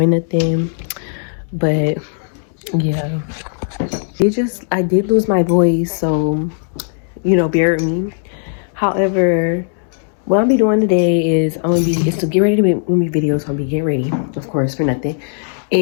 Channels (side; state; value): right; silent; 67 dB below the other